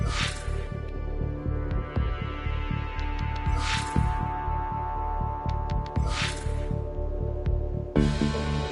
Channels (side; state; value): both; identical; correlation 1.00